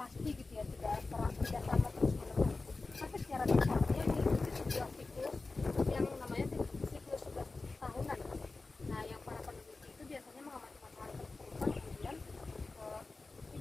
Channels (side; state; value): right; quieter; 3.6 dB